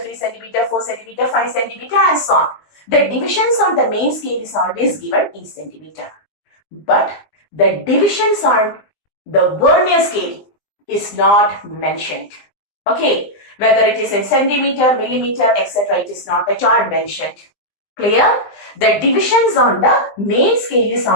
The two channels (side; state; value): right; late; 20 ms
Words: centimeter, 4 centimeter, 5 centimeter and so on. The divisions on the main scale is always given in centimeter. But the divisions on the Vernier scale is not mentioned. Okay, whether it is in centimeter, millimeter, etc., it is not at all mentioned. Clear? The divisions on the main scale is